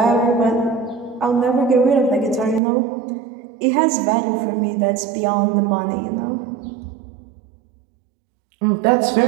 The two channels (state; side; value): drops out; left; at 2.6 s